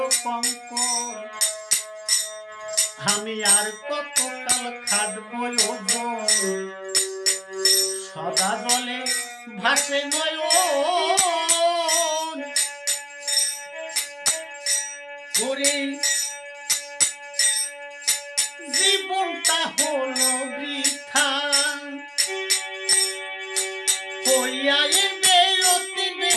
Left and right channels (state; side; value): identical; both; correlation 1.00